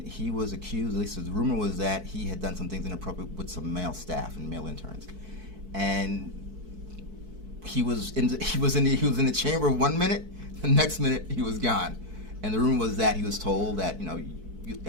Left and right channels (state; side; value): late; left; 4.6 ms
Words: he was accused, at least the rumor was that he had done some things inappropriate with some male staff and male interns. And he was in the chamber 1 minute, the next minute he was gone. And the rumor was that he was told that, you